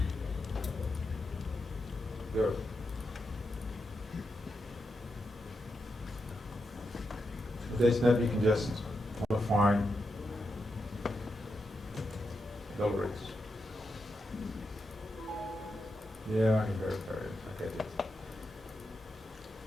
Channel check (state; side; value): normal; both; correlation 0.86